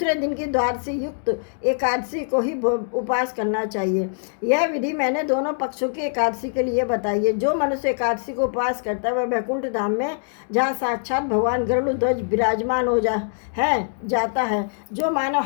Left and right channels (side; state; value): right; silent; digital silence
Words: दिन की द्वादशी युक्त एकादशी को ही उपवास करना चाहिए। यह विधि मैंने दोनों पक्षों की एकादशी के लिए बताई है। जो मनुष्य एकादशी को उपवास करता है वह वैकुंठ धाम में, जहाँ साक्षात भगवान गरुड़ विराजमान हो जाता है। जो मानव